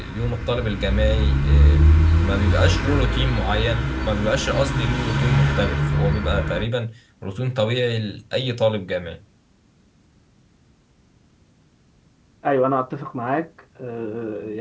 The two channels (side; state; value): both; identical; correlation 1.00